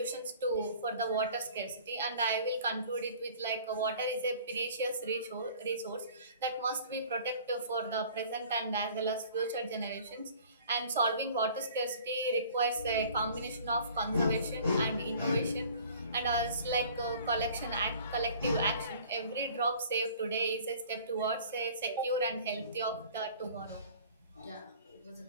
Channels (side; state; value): both; inverted; correlation -0.49